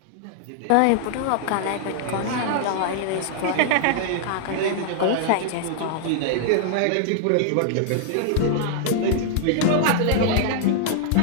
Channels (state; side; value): different; both; correlation -0.01